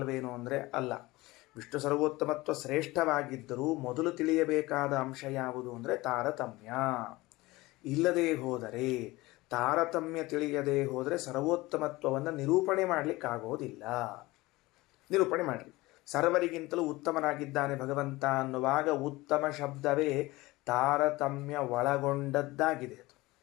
ಅಂದರೆ ಅಲ್ಲ. ವಿಷ್ಣು ಸರ್ವೋತ್ತಮತ್ವ ಶ್ರೇಷ್ಠವಾಗಿದ್ದರೂ ಮೊದಲು ತಿಳಿಯಬೇಕಾದ ಅಂಶ ಯಾವುದು ಅಂದರೆ ತಾರತಮ್ಯ. ಇಲ್ಲದೇ ಹೋದರೆ, ತಾರತಮ್ಯ ತಿಳಿಯದೇ ಹೋದರೆ ಸರ್ವೋತ್ತಮತ್ವವನ್ನು ನಿರೂಪಣೆ ಮಾಡಲಿಕ್ಕಾಗೋದಿಲ್ಲ. ನಿರೂಪಣೆ ಮಾಡಲಿ. ಸರ್ವರಿಗಿಂತಲೂ ಉತ್ತಮನಾಗಿದ್ದಾನೆ ಭಗವಂತ ಅನ್ನುವಾಗ ಉತ್ತಮ ಶಬ್ದವೇ ತಾರತಮ್ಯ ಒಳಗೊಂಡದ್ದಾಗಿದೆ. ಅದು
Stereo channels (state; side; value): quieter; right; 20.3 dB